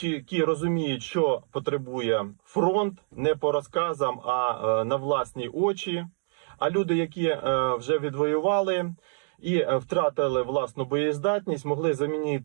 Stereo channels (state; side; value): silent; left; 60 dB below the other